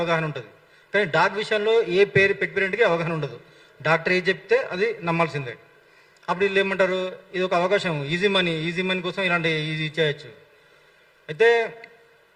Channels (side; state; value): both; identical; correlation 1.00